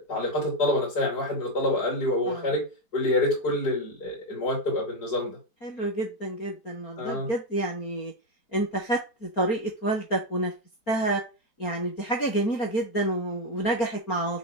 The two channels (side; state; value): right; late; 4.3 ms